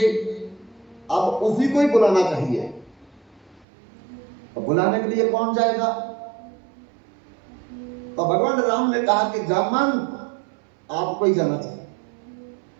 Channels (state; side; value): drops out; left; at 3.7 s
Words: अब उसी को ही बुलाना चाहिए। तो बुलाने के लिए कौन जाएगा? तो भगवान राम ने कहा कि जामंत आपको ही जाना चाहिए।